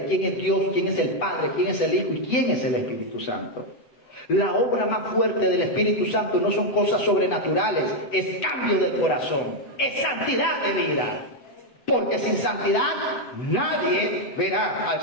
quién es Dios, quién es el Padre, quién es el Hijo y quién es el Espíritu Santo. La obra más fuerte del Espíritu Santo no son cosas sobrenaturales, es cambio del corazón, es santidad de vida. Porque sin santidad nadie verá al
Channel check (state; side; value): late; right; 8.0 ms